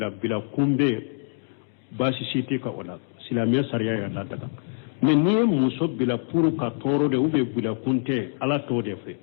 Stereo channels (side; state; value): right; silent; digital silence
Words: bɛ baasi si tɛ ka o la silamɛya sariya yɛrɛ ladaga mais n'i ye muso bila pour ka tɔɔrɔ de ou bien bilakun tɛ ala t'o de fɛ